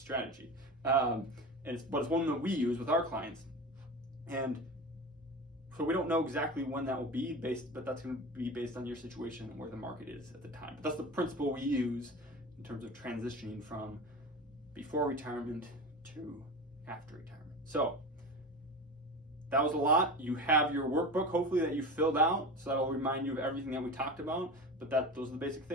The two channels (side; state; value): both; normal; correlation 0.29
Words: but it's one that we use with our clients. And So we don't know exactly when that will be but that's going to be based on your situation and where the market is at the time. But that's the principle we use in terms of transitioning from before retirement to after retirement. So that was a lot. You have your workbook, hopefully, that you filled out, so that'll remind you of everything that we talked about. But those are the basic